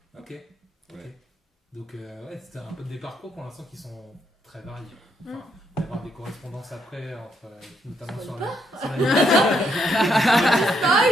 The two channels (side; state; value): both; normal; correlation 0.75